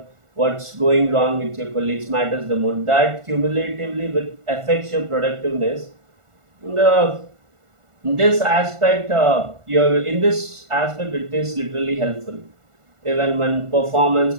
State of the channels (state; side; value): late; left; 1.4 ms